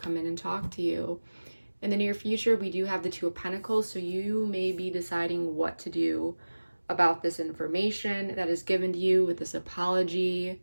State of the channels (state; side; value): inverted; both; correlation -1.00